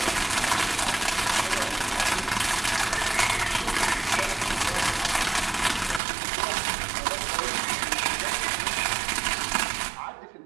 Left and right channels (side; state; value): left; drops out; at 6.0 s